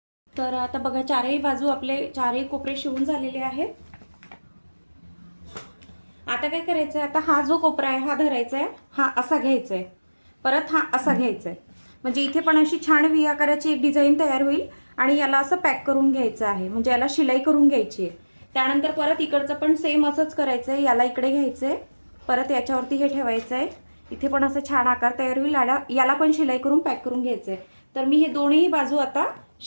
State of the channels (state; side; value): inverted; both; correlation -1.00